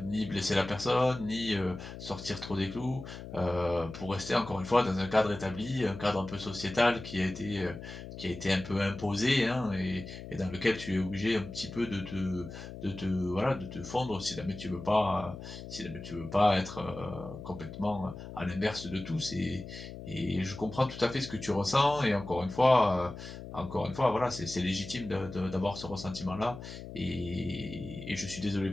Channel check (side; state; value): left; noise; hum, 11 dB below the sound